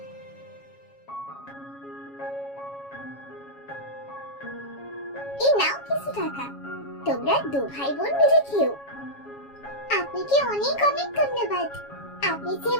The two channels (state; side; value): late; right; 7.2 ms